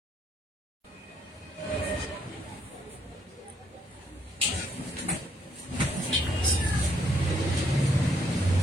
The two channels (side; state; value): both; normal; correlation 0.71